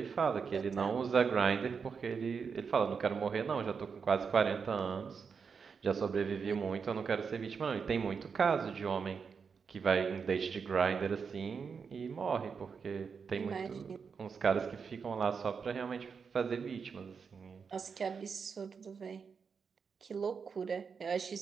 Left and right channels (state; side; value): quieter; left; 5.9 dB